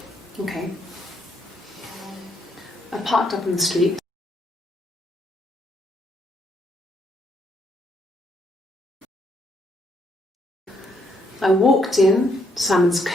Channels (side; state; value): both; normal; correlation 0.73